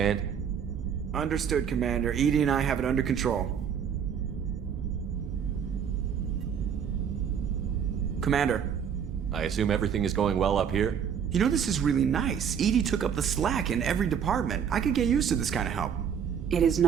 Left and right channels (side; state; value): left; quieter; 7.8 dB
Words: Understood, Commander. Edie and I have it under control. Commander. I assume everything is going well up here? You know, this is really nice. Edie took up the slack in every department. I could get used to this kind of help. It is